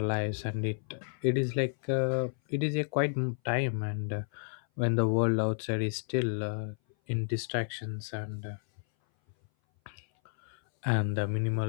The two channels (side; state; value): right; silent; 57 dB below the other